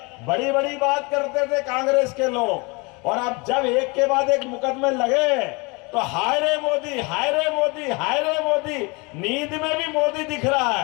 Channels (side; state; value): right; quieter; 28.3 dB